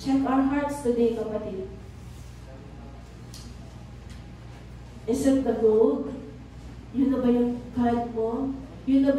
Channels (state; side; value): identical; both; correlation 1.00